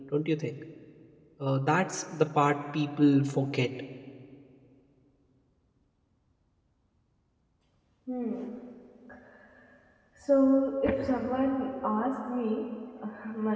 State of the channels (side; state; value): both; identical; correlation 1.00